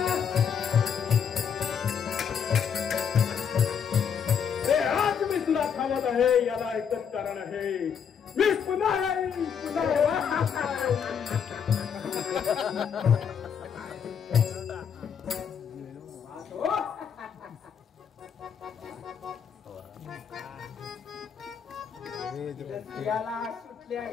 आहे याला एकच कारण आहे मी पुन्हा येईन याला सुटले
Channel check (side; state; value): right; quieter; 7.4 dB